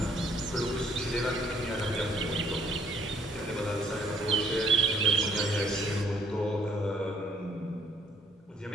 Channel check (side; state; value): both; normal; correlation 0.66